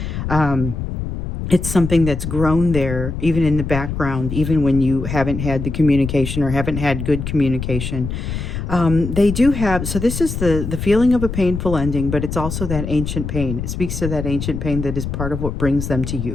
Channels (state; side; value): noise; left; rumble, 5 dB below the sound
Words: It's something that's grown there, even in the background, even when you haven't had the communication or haven't had good communication. They do have, so this is the feeling of a painful ending, but it's also that ancient pain. It speaks to that ancient pain that is part of what brings them to